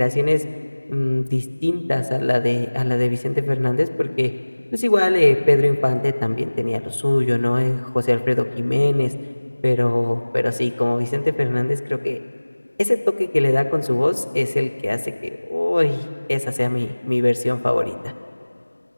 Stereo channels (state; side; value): inverted; both; correlation -1.00